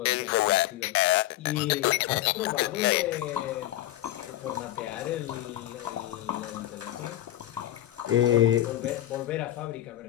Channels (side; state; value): right; quieter; 14.4 dB